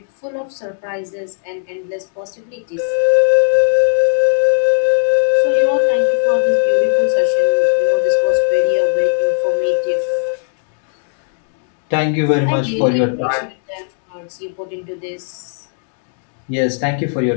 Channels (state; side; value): silent; right; 68 dB below the other